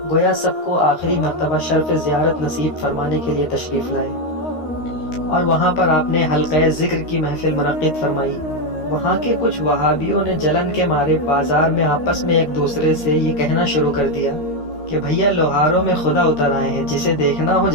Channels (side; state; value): right; late; 13 ms